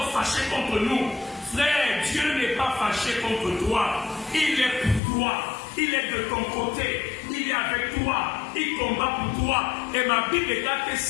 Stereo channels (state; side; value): drops out; right; at 5.0 s